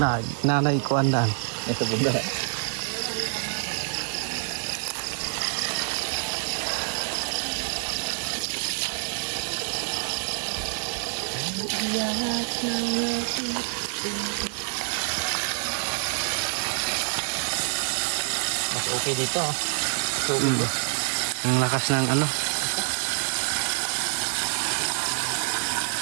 na. Nanay ko andaan. Ito bundok. Mas okay dito. Ang lakas ng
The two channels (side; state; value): left; silent; 60 dB below the other